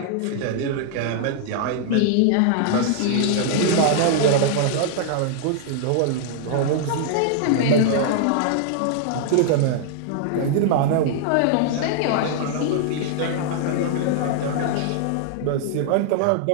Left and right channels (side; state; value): both; different; correlation 0.00